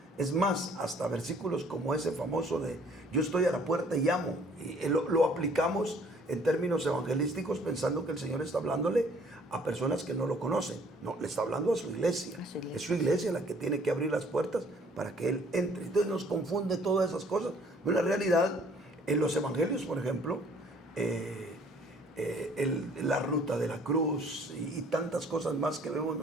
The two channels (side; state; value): both; normal; correlation 0.58